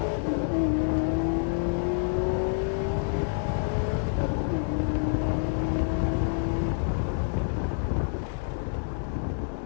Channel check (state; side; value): silent; right; digital silence